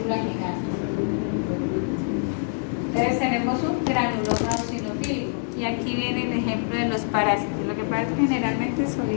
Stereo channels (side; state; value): right; silent; 62 dB below the other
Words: gigante. Entonces tenemos un granuloma eosinofílico, y aquí viene el ejemplo de los parásitos. Lo que pasa es que generalmente